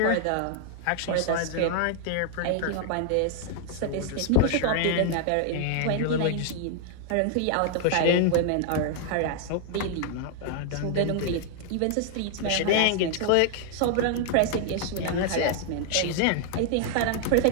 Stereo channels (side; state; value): both; different; correlation 0.00